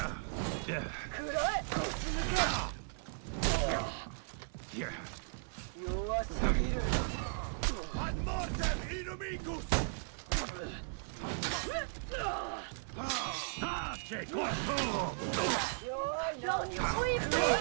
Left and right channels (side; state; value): left; silent; 53 dB below the other